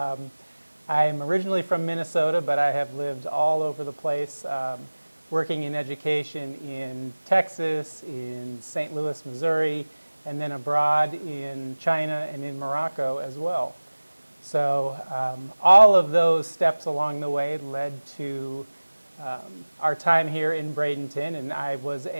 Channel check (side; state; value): both; inverted; correlation -1.00